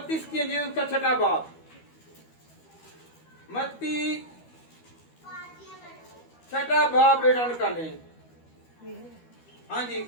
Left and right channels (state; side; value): late; right; 12 ms